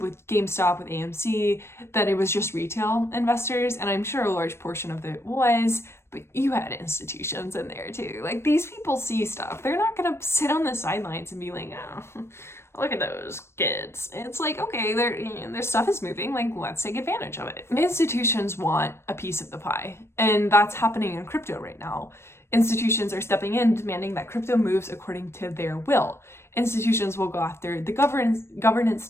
with GameStop, with AMC, that it was just retail investors, and I'm sure a large portion of it was, But you had institutions in there too. Like, these people see stuff. They're not gonna sit on the sidelines and be like, oh, look at those kids. It's like, okay, their stuff is moving, like, let's take advantage of it. Institutions want a piece of the pie, and that's happening in crypto right now. Institutions are stepping in, demanding that crypto moves according to their will. Institutions will go after the governance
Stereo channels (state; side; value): late; right; 0.12 ms